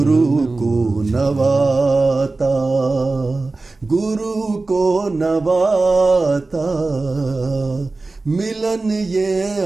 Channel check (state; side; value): quieter; left; 3.4 dB